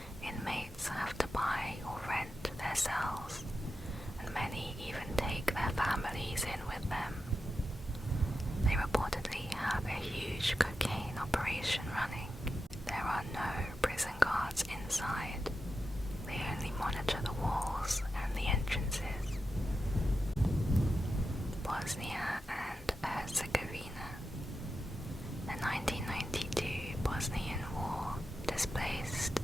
Inmates have to buy or rent their cells, and many even take their families in with them. They reportedly have a huge cocaine operation running. There are no prison guards inside. They only monitor the walls and the entrances. Bosnia and Herzegovina. The 1992 Bosnian War displaced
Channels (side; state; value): both; normal; correlation 0.90